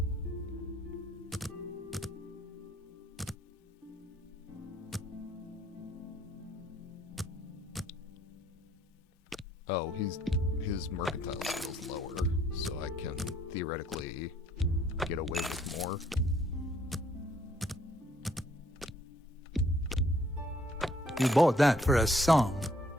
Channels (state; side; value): normal; both; correlation 0.65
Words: Oh, his mercantile skill's lower, so I can theoretically get away with more. You bought that for a song.